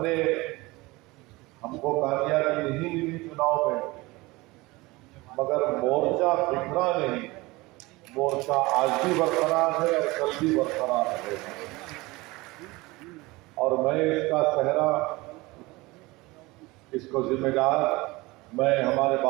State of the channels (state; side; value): quieter; left; 22.0 dB